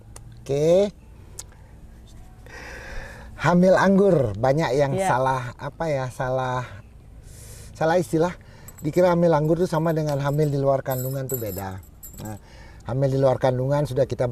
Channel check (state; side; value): identical; both; correlation 1.00